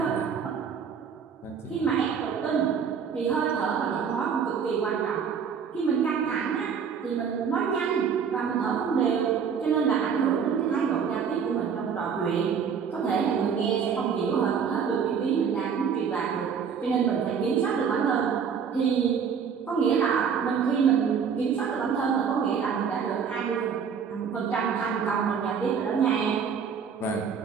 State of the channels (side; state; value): left; quieter; 6.8 dB